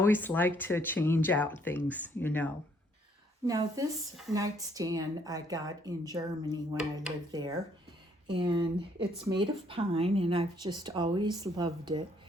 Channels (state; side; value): normal; both; correlation 0.66